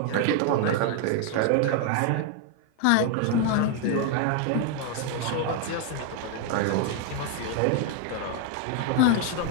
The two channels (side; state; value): both; different; correlation 0.01